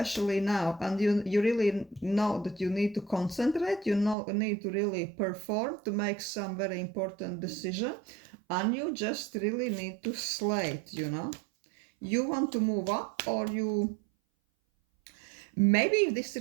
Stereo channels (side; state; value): left; drops out; at 4.2 s